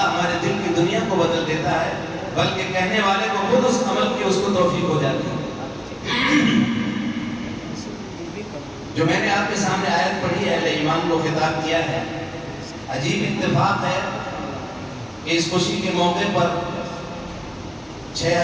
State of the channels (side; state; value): both; identical; correlation 1.00